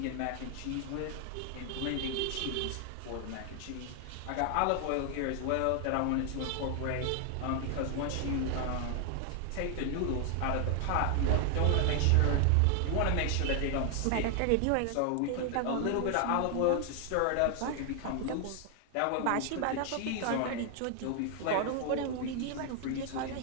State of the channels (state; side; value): different; both; correlation 0.00